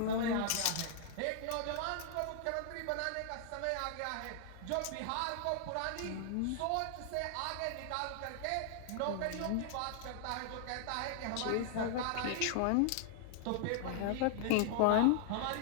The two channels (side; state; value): both; different; correlation 0.00